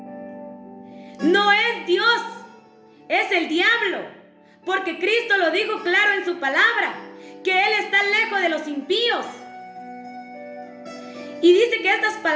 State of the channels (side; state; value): both; identical; correlation 1.00